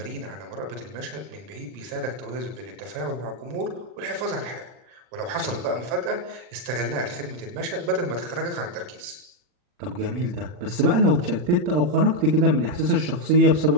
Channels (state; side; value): late; left; 40 ms